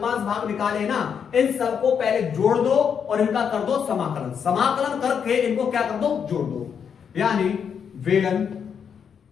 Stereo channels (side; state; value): right; quieter; 7.3 dB